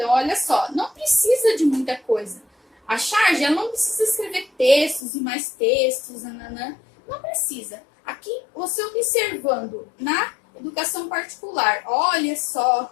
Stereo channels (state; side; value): drops out; right; at 5.1 s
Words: olha só, não precisa de muita coisa. A charge, ela não precisa escrever textos e mais textos, nananã. Não precisa. Aqui, você observando na educação particular, olha